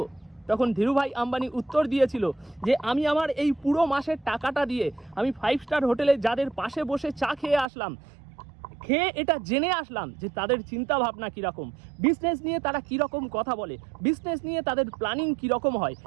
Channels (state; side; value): drops out; left; at 7.7 s